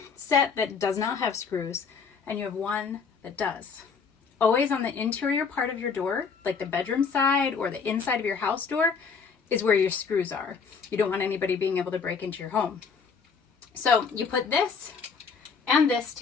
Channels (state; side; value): quieter; right; 5.7 dB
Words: set that does not have screws, and you have one that does. Always on the interior part of your door, like the bedroom side or the inside of your house door, is where your screws are. You don't want anybody being able to break into your home. So you put this and this